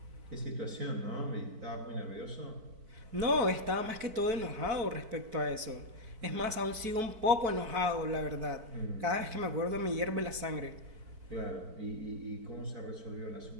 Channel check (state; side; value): late; left; 4.5 ms